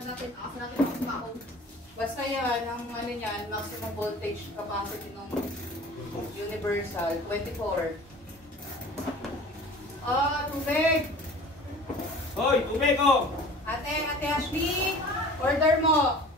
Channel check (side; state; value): both; normal; correlation 0.43